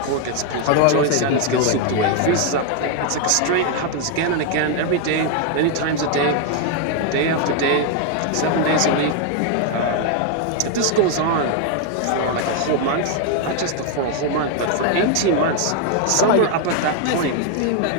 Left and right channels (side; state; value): both; different; correlation 0.01